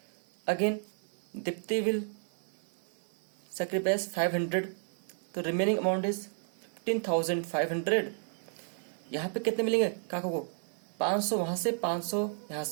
Again, Dipti will sacrifice 500, तो रिमेनिंग अमाउंट इज 15,500। यहाँ पे कितने मिलेंगे काका को? 500 वहां से, 500 यहाँ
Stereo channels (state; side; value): silent; left; digital silence